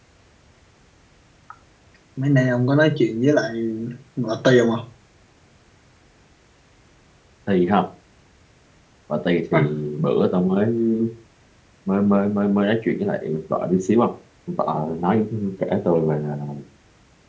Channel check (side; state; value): both; identical; correlation 1.00